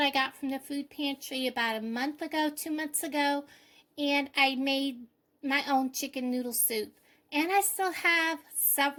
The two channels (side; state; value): both; identical; correlation 1.00